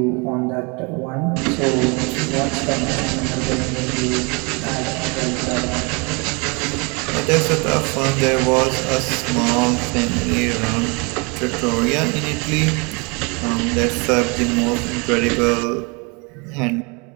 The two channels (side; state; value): left; quieter; 30.8 dB